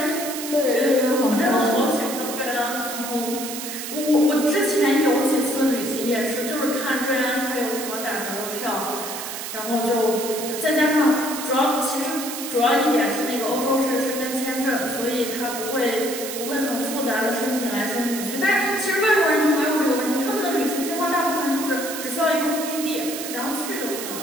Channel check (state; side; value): noise; right; hiss, 7 dB below the sound